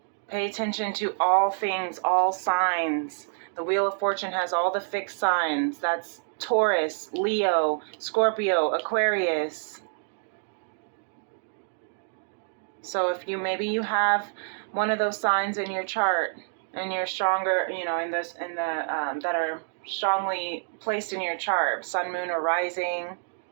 Pay attention to all things, all signs. The Wheel of Fortune has all the fixed signs. That's Taurus, Leo, Scorpio, Aquarius. So if maybe you have one of those signs in your chart, and you're stronger, that are strongly placed in your chart, sun, moon, or rising,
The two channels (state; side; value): silent; left; digital silence